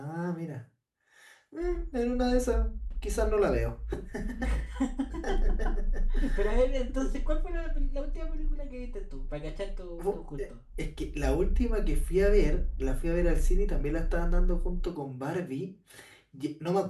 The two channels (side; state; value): both; identical; correlation 1.00